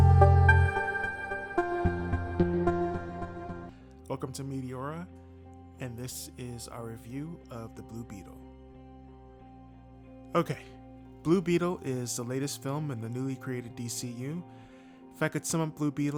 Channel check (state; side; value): identical; both; correlation 1.00